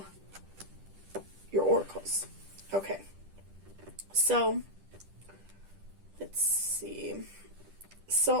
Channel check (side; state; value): left; late; 10 ms